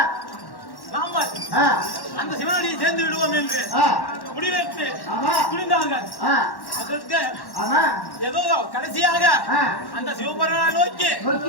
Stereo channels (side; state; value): right; late; 1.1 ms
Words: நாம அந்த சிவனடியை சேர்ந்து விடுவோம் என்று முடிவெடுத்து துணிந்தார்கள். அதற்கு ஏதோ கடைசியாக அந்த சிவபெருமானை நோக்கி